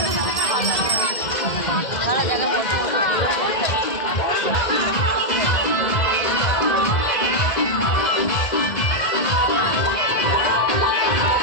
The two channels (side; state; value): right; late; 2.0 ms